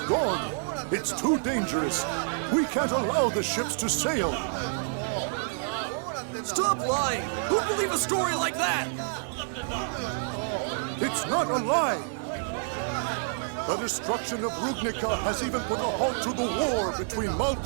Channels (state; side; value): silent; left; 59 dB below the other